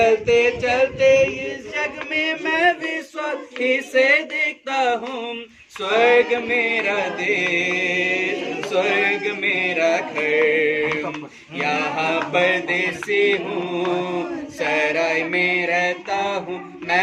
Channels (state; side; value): identical; both; correlation 1.00